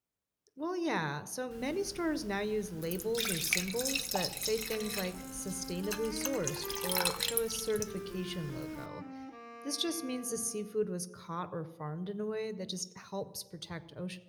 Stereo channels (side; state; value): both; identical; correlation 1.00